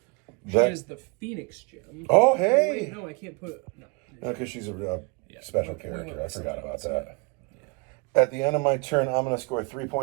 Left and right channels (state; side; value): quieter; left; 29.7 dB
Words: She is the Phoenix Gem. Oh, hey! Wait, no, I can't put it. No. No, because she's a special character. I forgot about that. Yeah. At the end of my turn, I'm going to score 3